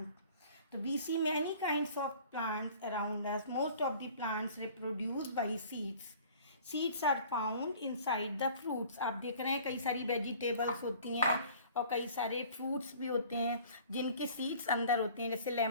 तो we see many kinds of plants around us. Most of the plants reproduce by seeds. Seeds are found inside the fruits. आप देख रहे हैं कई सारी वेजिटेबल्स होती हैं और कई सारे फ्रूट्स भी होते हैं जिनके सीड्स अंदर होते हैं। जैसे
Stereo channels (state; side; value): inverted; both; correlation -0.49